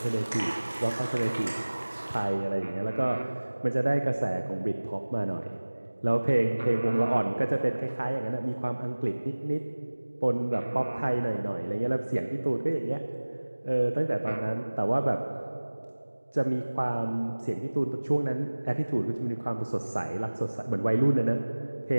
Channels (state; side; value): inverted; both; correlation -1.00